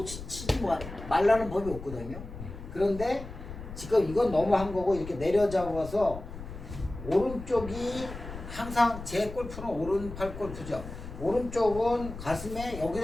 치지 말라는 법이 없거든요. 그런데 지금 이건 너무 한 거고 이렇게 내려잡아서 오른쪽이 항상 제 골프는 오른팔 골프죠. 오른쪽은 가슴에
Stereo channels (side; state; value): left; noise; rumble, 11 dB below the sound